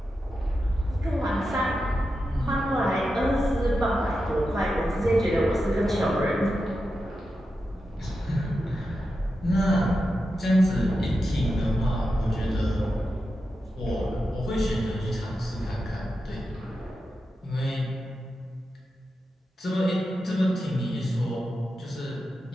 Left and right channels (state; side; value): normal; both; correlation 0.89